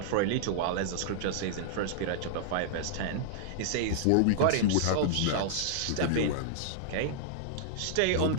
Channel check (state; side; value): different; both; correlation -0.01